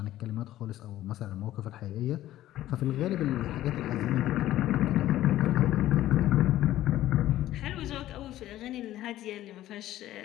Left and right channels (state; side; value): quieter; right; 14.0 dB